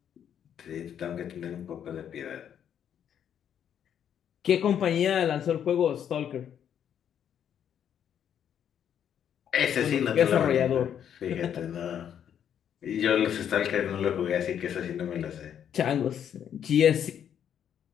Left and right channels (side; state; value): right; quieter; 9.1 dB